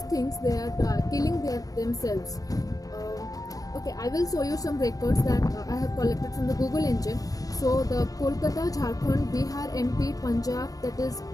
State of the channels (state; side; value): late; right; 0.17 ms